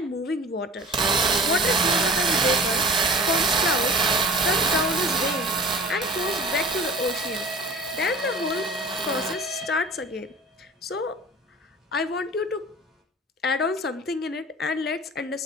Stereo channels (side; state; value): both; normal; correlation 0.41